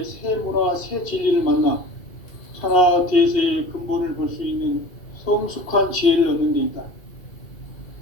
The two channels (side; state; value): right; late; 2.3 ms